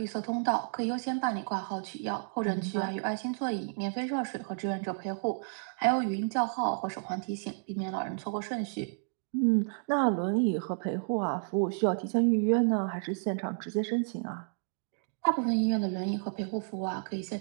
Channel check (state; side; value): silent; left; digital silence